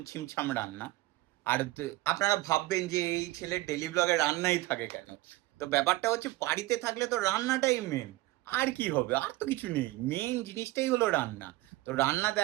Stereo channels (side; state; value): left; quieter; 18.5 dB